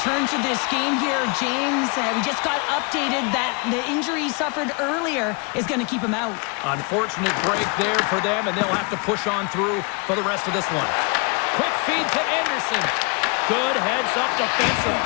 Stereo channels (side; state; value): right; quieter; 32.0 dB